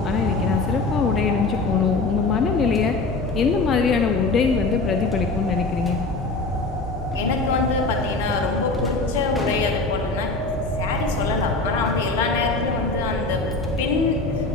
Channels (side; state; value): right; quieter; 3.5 dB